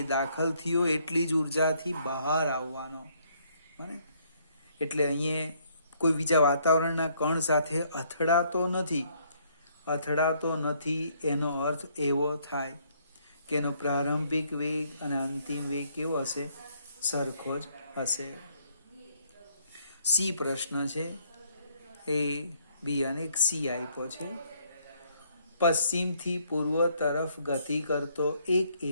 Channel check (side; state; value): both; inverted; correlation -0.68